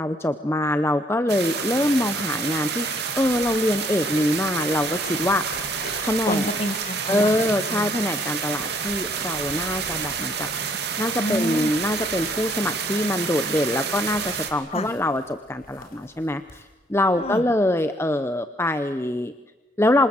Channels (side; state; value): both; normal; correlation 0.65